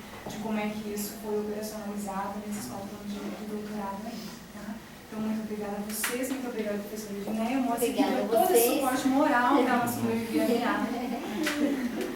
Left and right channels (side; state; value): both; identical; correlation 1.00